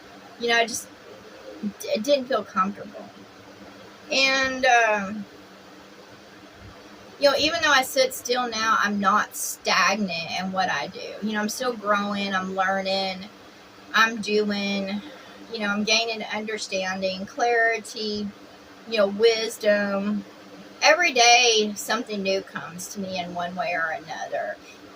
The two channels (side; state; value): both; identical; correlation 1.00